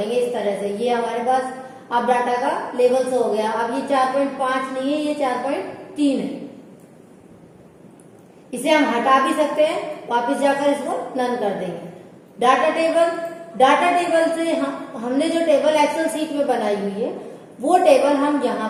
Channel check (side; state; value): both; identical; correlation 1.00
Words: इस तरह से। ये हमारे पास अब डाटा का लेवल शो हो गया। अब ये 4.5 नहीं है, ये 4.3 है। इसे हम हटा भी सकते हैं, वापस जाकर इसको नन कर देंगे। डाटा टेबल से हमने जो टेबल एक्सेल सीट में बनाई हुई है वो टेबल हम यहाँ